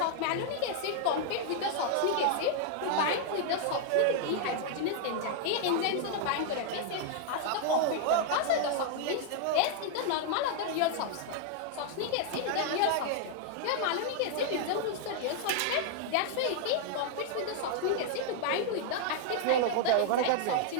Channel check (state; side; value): different; both; correlation 0.00